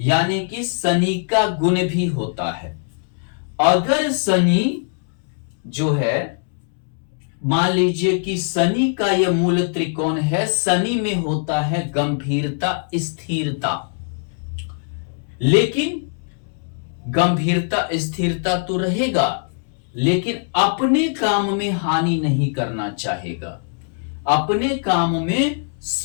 कि शनि का गुण भी होता है। अगर शनि जो है, मान लीजिए कि शनि का यह मूल त्रिकोण है, शनि में होता है गंभीरता, स्थिरता। लेकिन गंभीरता स्थिरता तो रहेगा, लेकिन अपने काम में हानि नहीं करना चाहेगा। अपने काम में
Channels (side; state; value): right; silent; 65 dB below the other